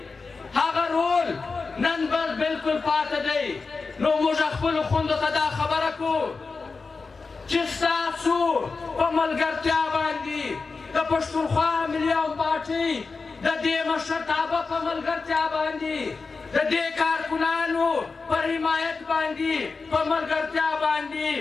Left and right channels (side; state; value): right; quieter; 4.4 dB